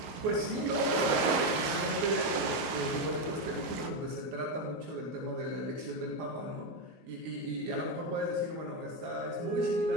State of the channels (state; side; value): late; left; 20 ms